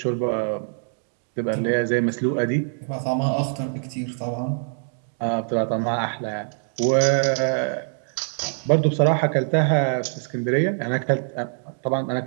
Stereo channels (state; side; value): silent; left; digital silence